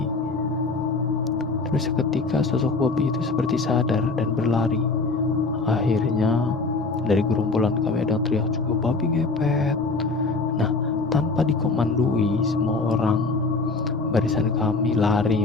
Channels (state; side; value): quieter; right; 3.8 dB